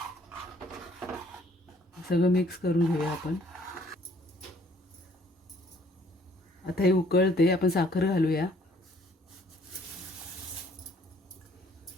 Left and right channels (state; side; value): normal; both; correlation 0.61